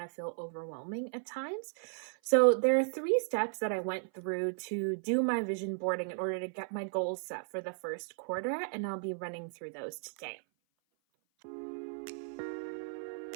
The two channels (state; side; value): silent; left; 54 dB below the other